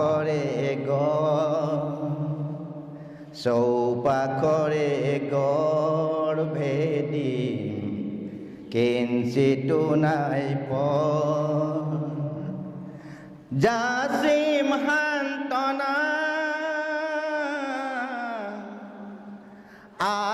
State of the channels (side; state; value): both; identical; correlation 1.00